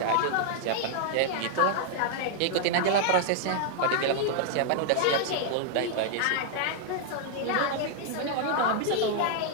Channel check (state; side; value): different; both; correlation -0.01